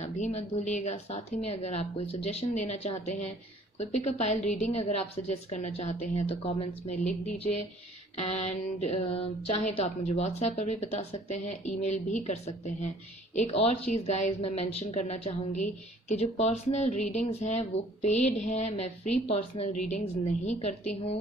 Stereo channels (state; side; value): normal; both; correlation 0.55